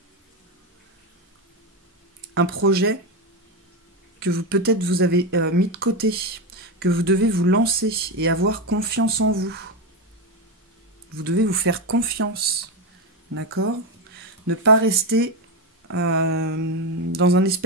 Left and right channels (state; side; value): normal; both; correlation 0.12